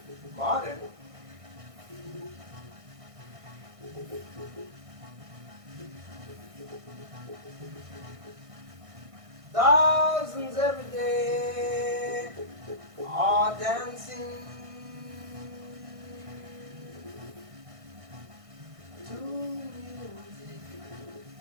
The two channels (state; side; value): late; left; 1.6 ms